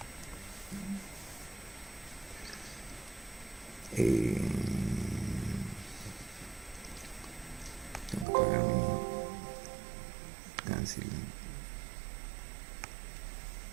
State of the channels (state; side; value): drops out; left; at 8.2 s